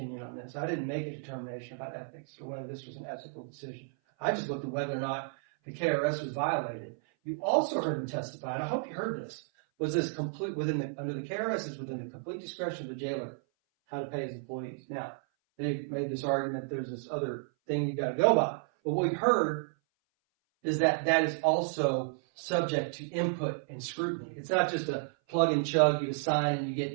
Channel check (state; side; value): silent; left; 56 dB below the other